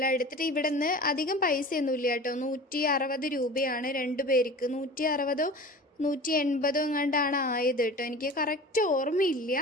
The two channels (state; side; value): normal; both; correlation 0.38